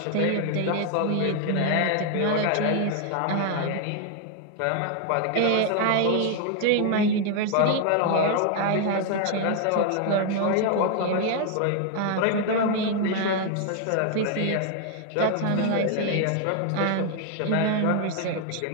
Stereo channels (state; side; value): different; both; correlation 0.00